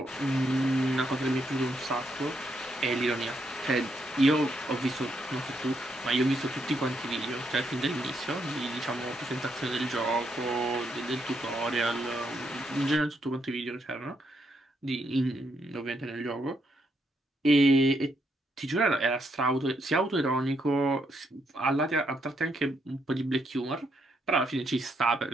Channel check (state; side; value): normal; both; correlation 0.77